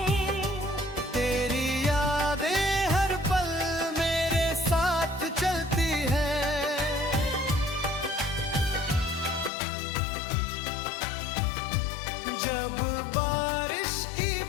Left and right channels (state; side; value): drops out; right; at 9.5 s